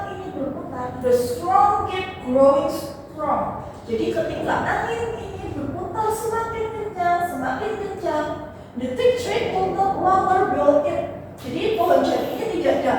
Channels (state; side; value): identical; both; correlation 1.00